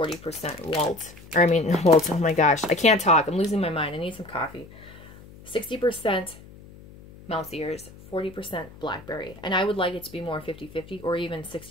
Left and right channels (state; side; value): noise; left; hum, 20 dB below the sound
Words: Walt. Or, I mean, Walt, oh my gosh. I can't talk. I'm losing my mind. I need some coffee. 60% mouse ears, 40% blackberry. And I would like it to be more 50-50, or even